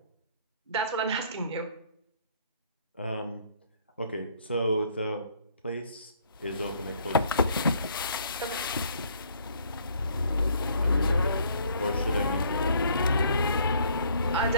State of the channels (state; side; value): inverted; both; correlation -0.62